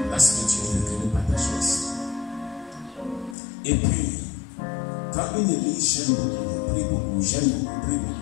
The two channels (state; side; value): drops out; right; at 3.4 s